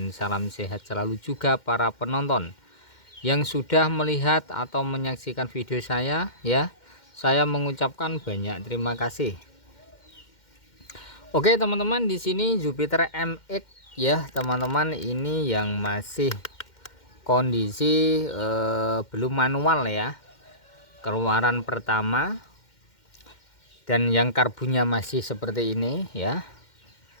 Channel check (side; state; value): right; late; 2.1 ms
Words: salam sehat selalu juga para penonton yang sudah melihat atau menyaksikan video saya. Saya mengucapkan banyak terima kasih. Oke teman-teman, di sini Jupiter MX ya teman-teman, ini yang masih kondisi belum manual ya, keluaran pertama, dan yang karbunya masih seperti ini ya,